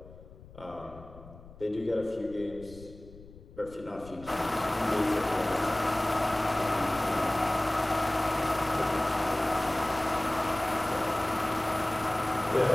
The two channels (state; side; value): noise; left; rumble, 19 dB below the sound